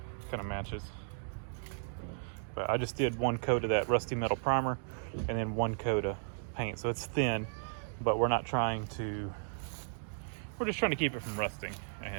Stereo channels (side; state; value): left; silent; digital silence